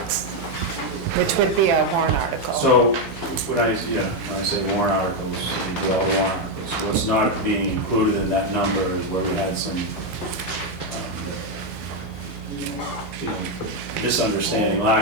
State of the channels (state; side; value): normal; both; correlation 0.04